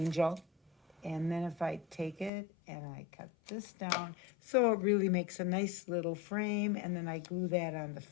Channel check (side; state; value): right; drops out; at 2.3 s